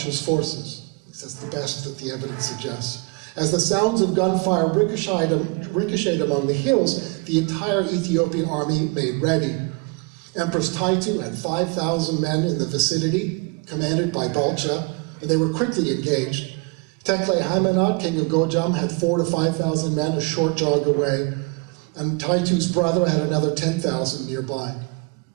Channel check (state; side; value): quieter; left; 30.7 dB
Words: forces. At least that's the best that the evidence suggests. As the sounds of gunfire ricocheted among the hills, the entire Ethiopian army made ready. Empress Taitu had 5,000 men in the vicinity, commanded by Balcha, and they were quickly engaged. Tekle Haimanot, king of Gojam, had 4,000 to 5,000 men a short jog away, and Taitu's brother had another 10,000 nearby.